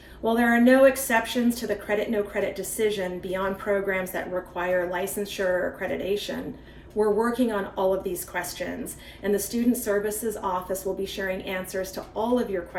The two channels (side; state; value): both; identical; correlation 1.00